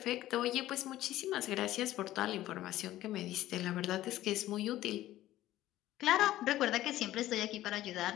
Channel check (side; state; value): right; quieter; 14.7 dB